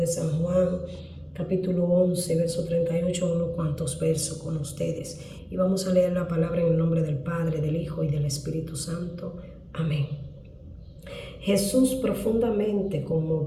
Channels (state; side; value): identical; both; correlation 1.00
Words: San Juan, capítulo 11, verso 38, unos cuantos versos con ustedes. Y vamos a leer la palabra en el nombre del Padre, del Hijo y del Espíritu Santo. Amén. Jesús, profundamente